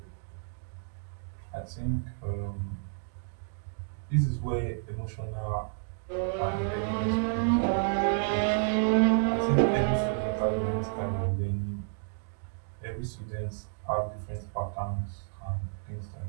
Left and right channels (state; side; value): silent; left; digital silence